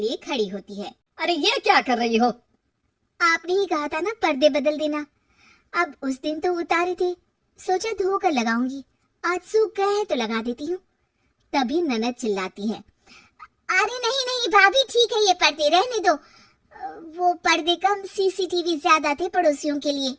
खड़ी होती है। अरे ये क्या कर रही हो? आपने ही कहा था ना पर्दे बदल देना। अब उस दिन तो उतारे थे, सोचा धोकर लगाऊंगी, आज सूख गए हैं तो लगा देती हूँ। तभी ननद चिल्लाती है, अरे नहीं नहीं भाभी, ठीक है ये पर्दे रहने दो। वो पर्दे कम, सीसीटीवी ज्यादा थे पड़ोसियों के लिए।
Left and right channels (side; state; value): both; identical; correlation 1.00